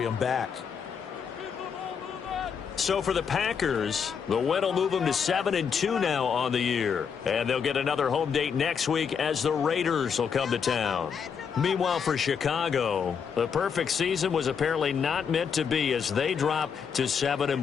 back. So for the Packers, the win will move them to 7-2 now on the year. And they'll get another home date next week as the Raiders will come to town. Meanwhile, for Chicago, the perfect season was apparently not meant to be as they drop to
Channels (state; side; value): quieter; right; 6.7 dB